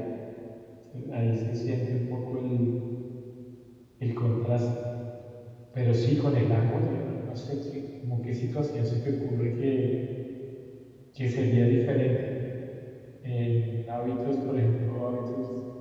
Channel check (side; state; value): both; identical; correlation 1.00